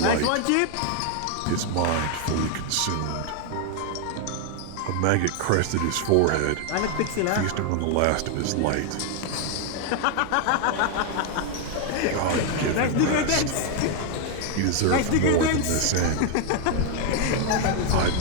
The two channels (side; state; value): both; different; correlation 0.00